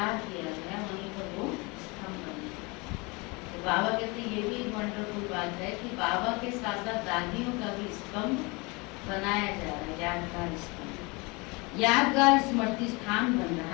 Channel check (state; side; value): quieter; right; 27.1 dB